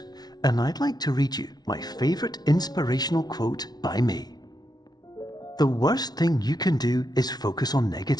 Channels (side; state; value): right; late; 0.19 ms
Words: and I'd like to read you my favorite inspirational quote by me. The worst thing you can do is focus on